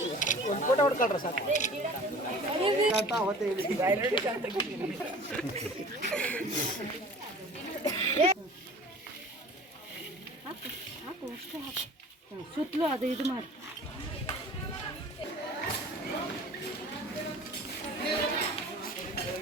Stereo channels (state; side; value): normal; both; correlation 0.43